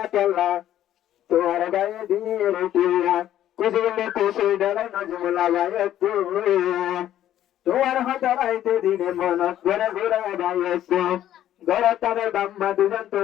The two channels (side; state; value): right; quieter; 12.0 dB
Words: কেল্লা তোমার গায়ে দিয়ে রুটিয়া কুসুরলে কুসুর ডালা নজমুলা গায়ে তোমার হাতে রাইতে দিনে মন ঘরে ঘুরে গাইছে ঘরে তাদের বাম্মা দুজন